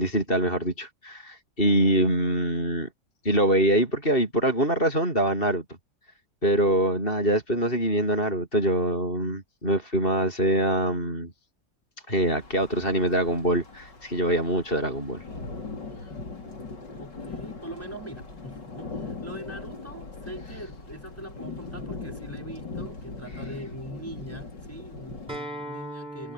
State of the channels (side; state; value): right; late; 2.7 ms